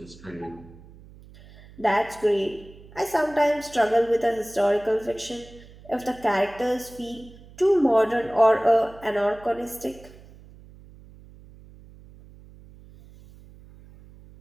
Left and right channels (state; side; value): noise; right; hum, 22 dB below the sound